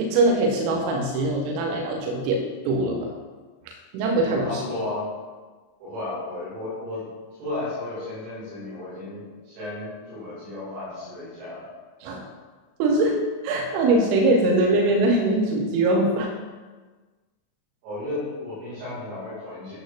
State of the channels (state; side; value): late; left; 37 ms